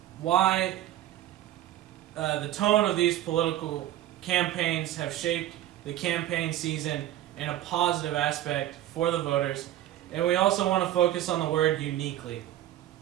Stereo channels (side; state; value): left; quieter; 13.3 dB